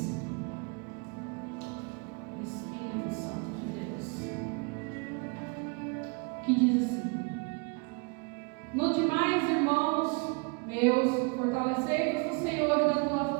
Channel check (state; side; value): quieter; left; 32.6 dB